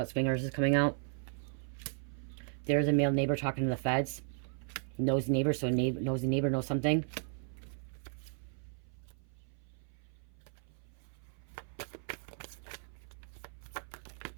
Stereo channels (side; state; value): left; silent; 54 dB below the other